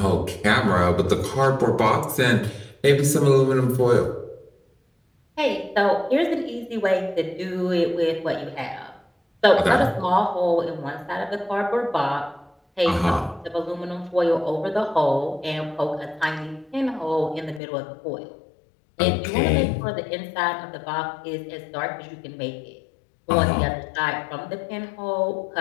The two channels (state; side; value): drops out; right; at 17.6 s